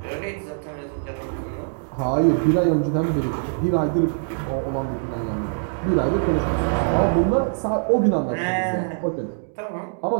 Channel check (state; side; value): silent; left; digital silence